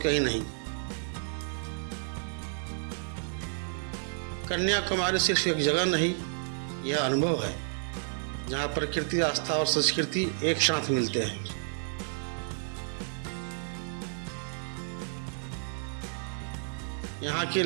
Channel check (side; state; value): left; silent; digital silence